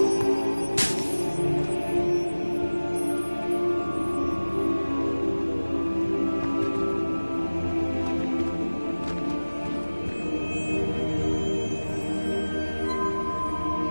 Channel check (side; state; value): both; inverted; correlation -1.00